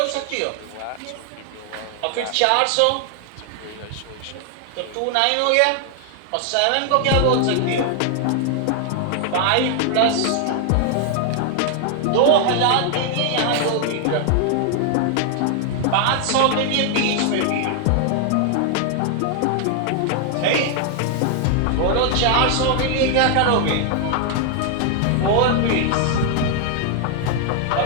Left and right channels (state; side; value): different; both; correlation 0.00